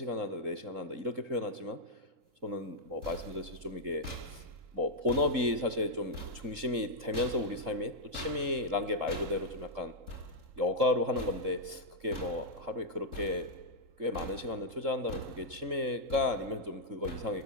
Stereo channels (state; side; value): late; left; 3.7 ms